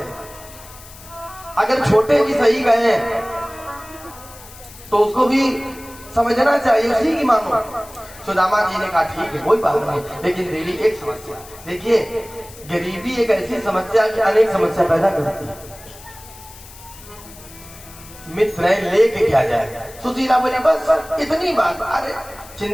हैं। अगर छोटे भी सही गए तो उसको भी समझना चाहिए, उसी की मानो। सुदामा जी ने कहा ठीक है कोई बात नहीं, लेकिन देवी एक समस्या। देखिए गरीबी एक ऐसी समस्या कि अनेक समस्या पैदा करती है। मित्र है लेके क्या जाए। सुशीला बोली बस इतनी बात। अरे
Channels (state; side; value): noise; left; hiss, 19 dB below the sound